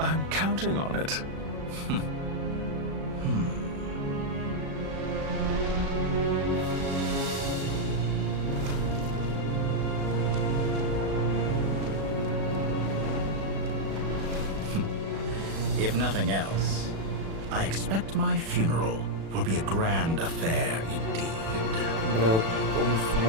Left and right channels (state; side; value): late; left; 36 ms